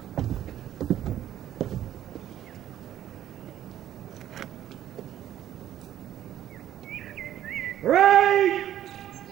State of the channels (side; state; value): left; quieter; 11.7 dB